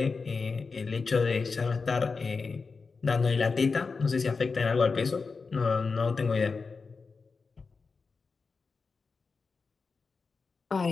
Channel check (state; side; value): quieter; right; 4.6 dB